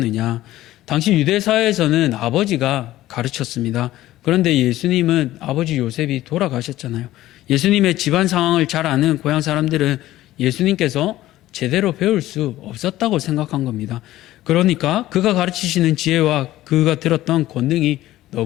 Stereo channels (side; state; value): right; quieter; 15.3 dB